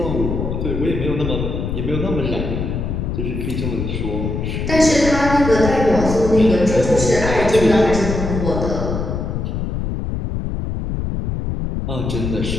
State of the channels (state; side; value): noise; left; rumble, 3 dB below the sound